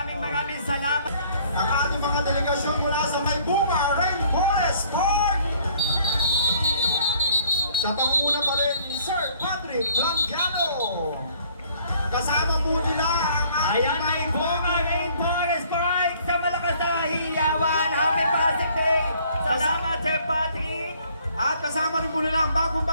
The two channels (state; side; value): inverted; both; correlation -0.59